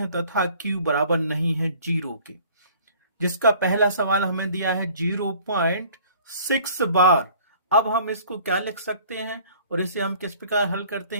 तथा Q बराबर नहीं है 0 के। जिसका पहला सवाल हमें दिया है 0.6 बार। अब हम इसको क्या लिख सकते हैं और इसे हम किस प्रकार हल करते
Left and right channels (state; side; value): inverted; both; correlation -0.52